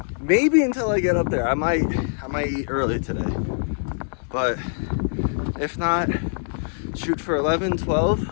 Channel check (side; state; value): right; silent; digital silence